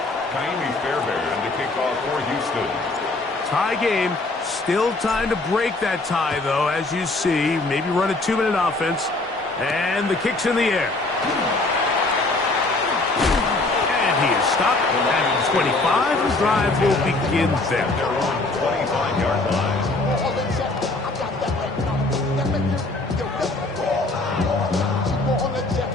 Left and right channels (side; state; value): right; quieter; 3.1 dB